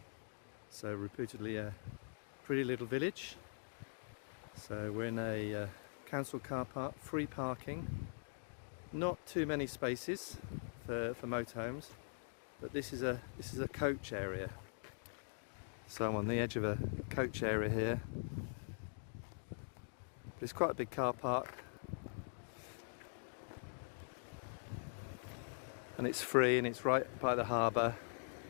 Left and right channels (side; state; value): right; silent; digital silence